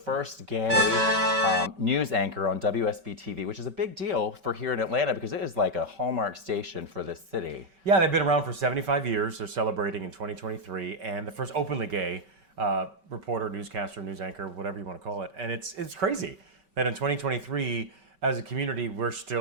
gay news anchor on WSB-TV, which is a big deal for here in Atlanta because it is like a hallmark station for this city. Yeah, they've been around for 75 years. They're celebrating in 2023, and the first openly gay reporter, newscaster, news anchor, whatever you want to call it. And it's crazy that in 2023, as a community, we're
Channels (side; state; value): left; late; 5.2 ms